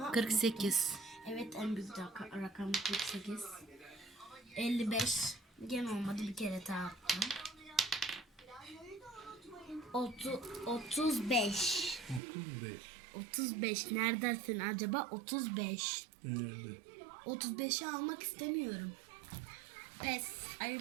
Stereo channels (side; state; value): left; drops out; at 12.2 s